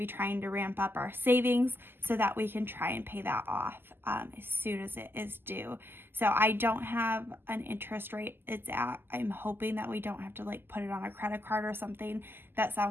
trying to ramp up our savings so that we can try and pay that off as soon as it is due. So I don't have an interest rate it's at. I'm hoping that we don't have to like put it on a credit card or something. That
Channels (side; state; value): left; late; 0.10 ms